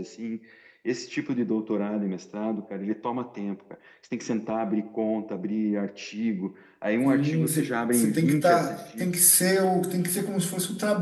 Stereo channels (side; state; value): both; identical; correlation 1.00